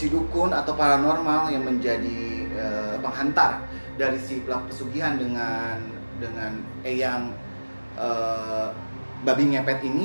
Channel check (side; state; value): both; inverted; correlation -1.00